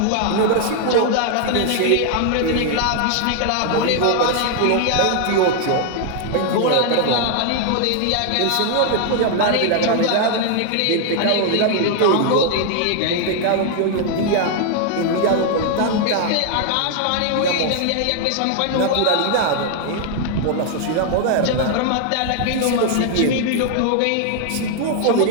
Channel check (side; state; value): both; different; correlation 0.00